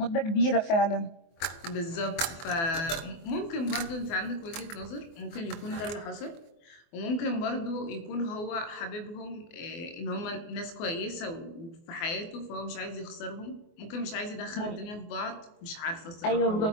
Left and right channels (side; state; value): right; late; 24 ms